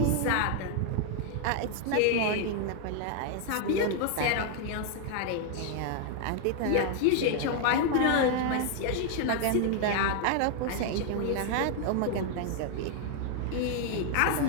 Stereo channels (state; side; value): different; both; correlation 0.00